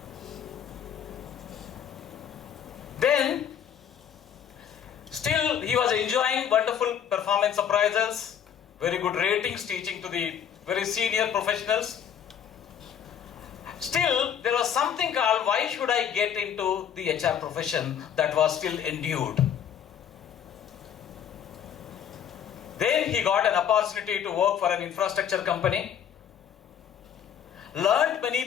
Then, still he was enjoying wonderful performance appraisals, very good ratings, teaching to the very senior professionals. Still, there was something called, why should I get into the HR profession, that was still endued. Then he got an opportunity to work for an infrastructure company, learned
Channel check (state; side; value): quieter; right; 8.7 dB